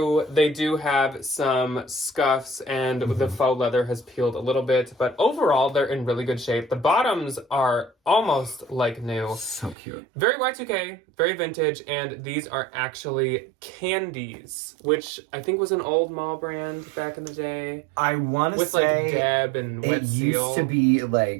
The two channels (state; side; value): drops out; left; at 9.8 s